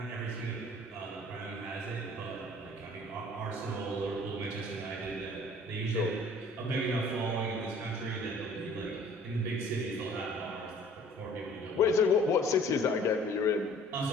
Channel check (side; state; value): both; normal; correlation 0.52